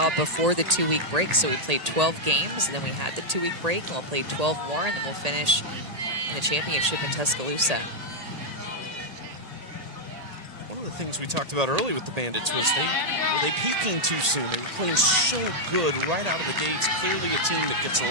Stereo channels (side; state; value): left; late; 1.8 ms